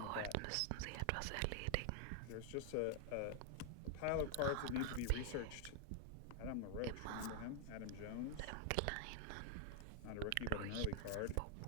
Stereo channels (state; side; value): different; both; correlation 0.00